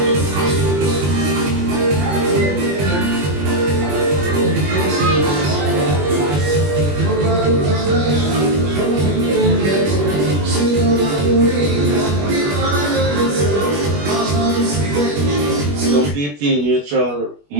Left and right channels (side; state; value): left; late; 21 ms